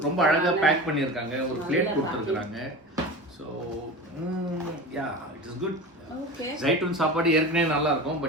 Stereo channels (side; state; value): both; normal; correlation 0.31